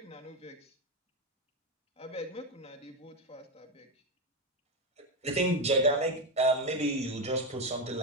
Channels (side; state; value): both; normal; correlation 0.11